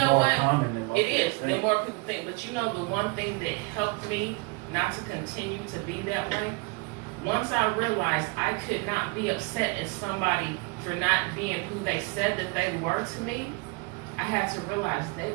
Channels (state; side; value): quieter; left; 27.6 dB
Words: what? It is. The more people think. But you know, the one thing that helped me not to continue to be that way, once I realized I could not be upset at somebody for not being who they said that they were to me, I had to realize they